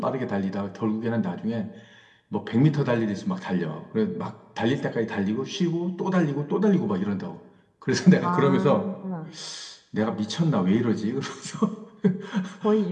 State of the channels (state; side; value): identical; both; correlation 1.00